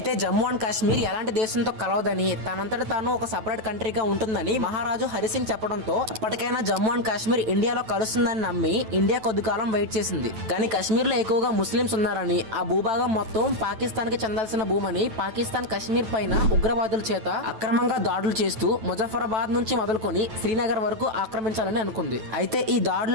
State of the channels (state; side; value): late; left; 9.2 ms